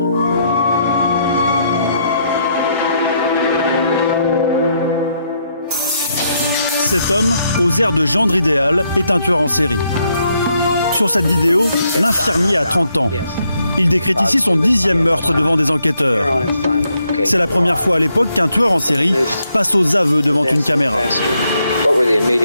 Cet homme, aux airs de gendre idéal, est un tueur en série. Sur cette vidéo, l'infirmier a 30 ans. Il décrète ici son 10e meurtre devant des enquêteurs. C'est la première fois à l'époque qu'un tueur en série passe aux aveux devant une caméra. What were the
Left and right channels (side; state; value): both; inverted; correlation -0.76